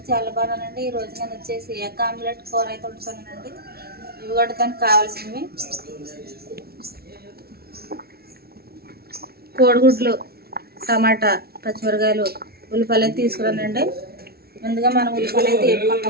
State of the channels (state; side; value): late; left; 0.45 ms